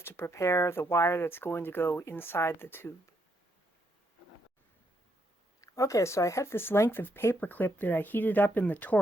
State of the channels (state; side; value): normal; both; correlation 0.76